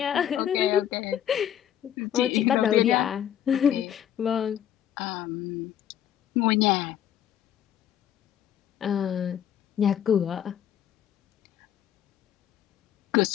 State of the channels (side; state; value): right; quieter; 10.3 dB